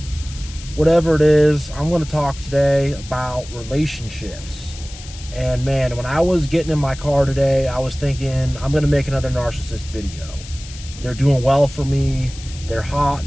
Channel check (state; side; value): noise; left; hiss, 16 dB below the sound